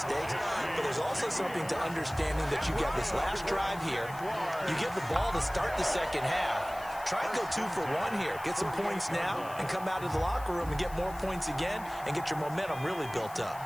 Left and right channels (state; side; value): noise; left; hiss, 19 dB below the sound